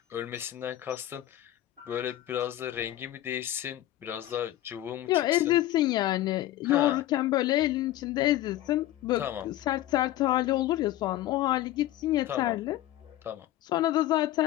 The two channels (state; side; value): quieter; right; 14.3 dB